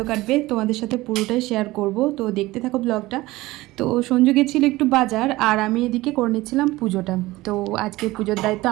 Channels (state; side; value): quieter; left; 18.9 dB